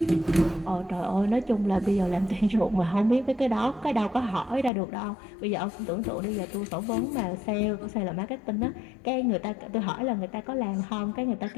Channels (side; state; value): right; drops out; at 4.7 s